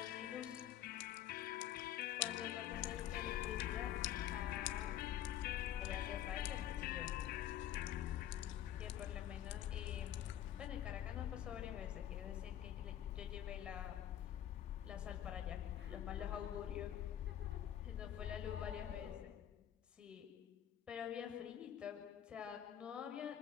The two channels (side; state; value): right; quieter; 11.3 dB